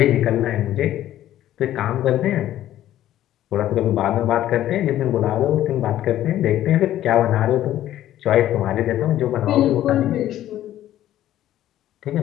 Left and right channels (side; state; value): right; quieter; 12.9 dB